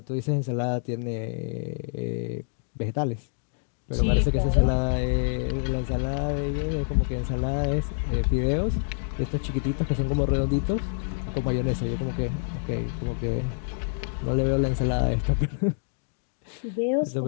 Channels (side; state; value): right; silent; digital silence